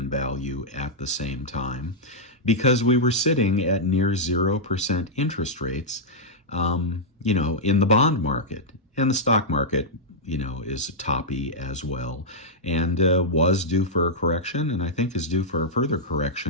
value at the same time because we were sitting at near 0% interest rates, in the bond market. And the stock market, is toppy as well, and was due for a correction, and I think is due for a further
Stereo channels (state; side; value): normal; both; correlation -0.08